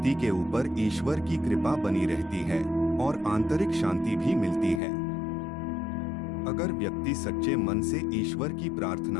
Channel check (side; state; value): right; drops out; at 4.8 s